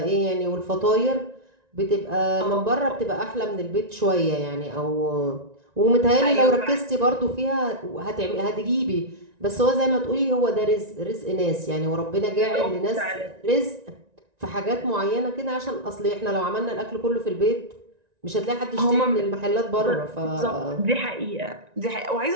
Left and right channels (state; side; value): late; left; 1.9 ms